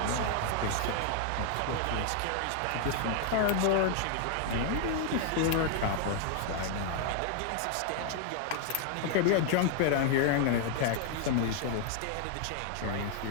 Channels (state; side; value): different; both; correlation 0.00